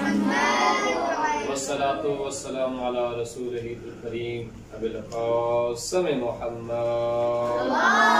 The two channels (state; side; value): identical; both; correlation 1.00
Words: वस्सलातु वस्सलामु अला रसूलिहिल करीम अबिल क़ासिम मुहम्मद।